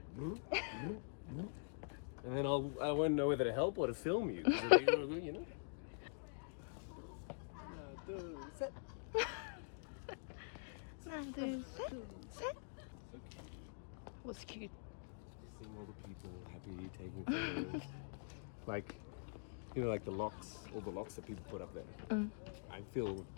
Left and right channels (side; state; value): right; silent; digital silence